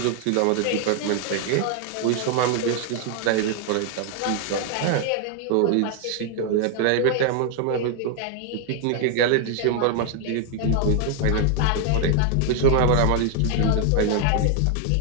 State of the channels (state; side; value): different; both; correlation 0.00